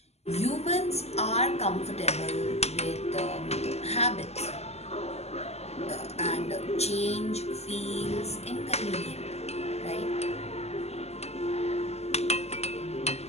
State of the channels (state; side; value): late; right; 0.30 ms